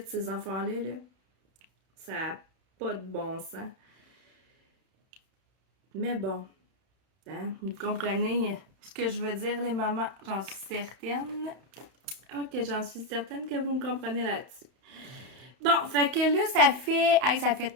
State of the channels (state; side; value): late; left; 31 ms